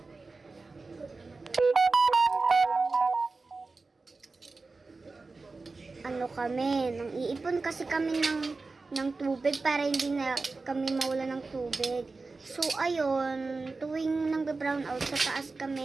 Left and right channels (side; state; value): left; quieter; 3.8 dB